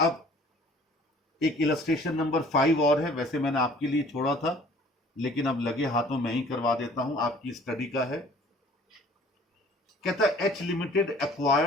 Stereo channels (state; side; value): normal; both; correlation 0.52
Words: अब एक इलस्ट्रेशन नंबर 5 और है, वैसे मैंने आपके लिए छोड़ा था, लेकिन अब लगे हाथों में ही करवा देता हूं, आपकी स्टडी का है। कहता है H limited